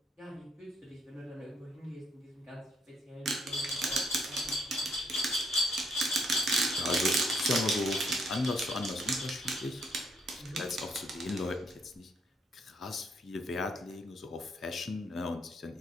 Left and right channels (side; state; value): both; normal; correlation 0.72